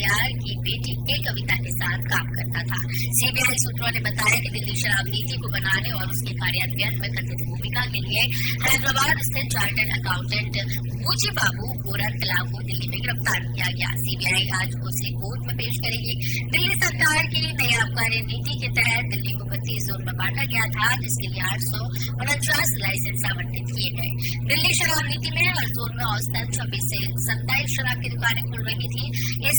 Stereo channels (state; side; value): identical; both; correlation 1.00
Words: की बेटी के कविता के साथ काम करता था। सीबीआई सूत्रों ने बताया कि दिल्ली शराब नीति को बनाने और उसके कार्यान्वयन में कथित भूमिका के लिए हैदराबाद स्थित चार्टर्ड अकाउंटेंट बुची बाबू गोरंटला को दिल्ली में गिरफ्तार किया गया। सीबीआई आज उसे कोर्ट में पेश करेगी। दिल्ली सरकार की नई आबकारी नीति के तहत दिल्ली को 32 जोन में बांटा गया था, जिसके लिए 849 लाइसेंस आवंटित किए गए। दिल्ली शराब नीति में हर जोन में औसतन 26 से 27 शराब की दुकानें खुल रही थी।